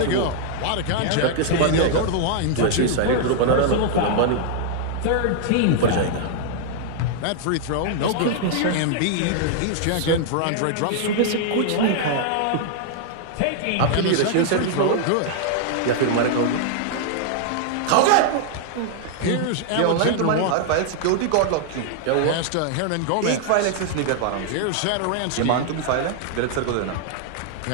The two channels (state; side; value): different; both; correlation -0.01